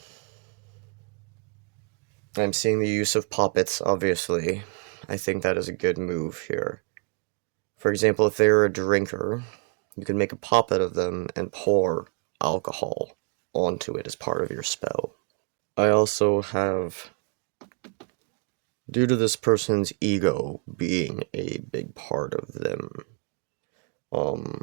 I'm seeing the use of puppets, obviously. I think that is a good move here. For example, if they're a drinker, you can make a puppet of them and pour alcohol onto it as part of your spell. I also have, due to this person's ego being a big part of them,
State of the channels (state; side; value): quieter; left; 36.3 dB